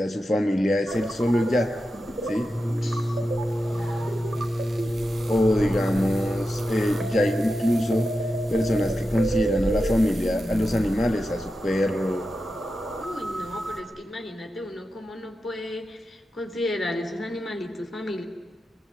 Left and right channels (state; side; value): normal; both; correlation 0.90